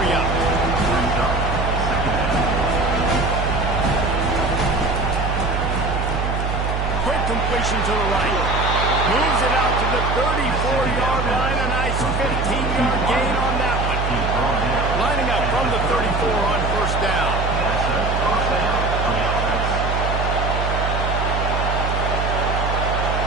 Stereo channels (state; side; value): noise; right; hum, 1 dB below the sound